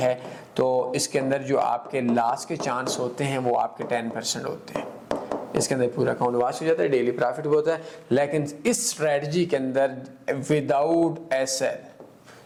तो इसके अंदर जो आपके लॉस के चांस होते हैं वो आपके 10% होते हैं। इसके अंदर पूरा अकाउंट वॉश हो जाता है, डेली प्रॉफिट भी होता है। लेकिन इस स्ट्रेटजी के अंदर विदाउट एसएल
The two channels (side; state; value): both; identical; correlation 1.00